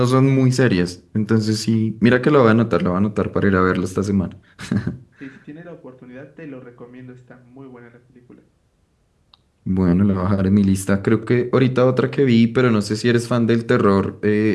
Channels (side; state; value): both; identical; correlation 1.00